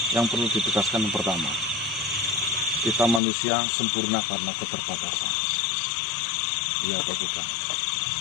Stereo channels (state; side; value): drops out; right; at 3.2 s